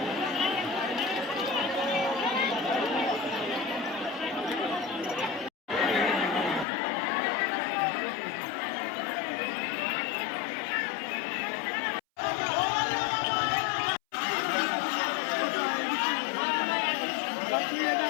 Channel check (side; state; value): right; drops out; at 6.7 s